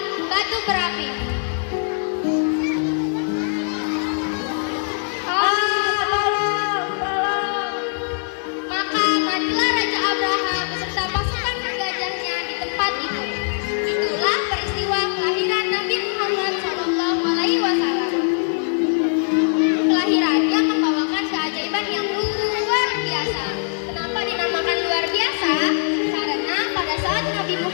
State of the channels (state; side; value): silent; right; 59 dB below the other